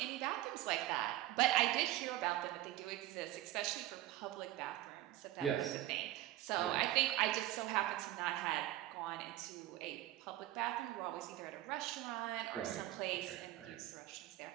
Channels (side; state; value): left; quieter; 15.0 dB